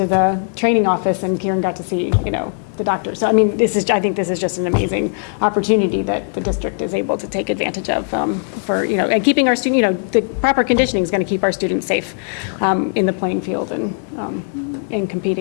the training office and Kieran got to see, the doctor. So, I think this is just an amazing opportunity that the district is able to take advantage of for, and keeping our student, the proper conditioning is going to keep our students safe in the playing field and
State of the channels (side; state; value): right; silent; 67 dB below the other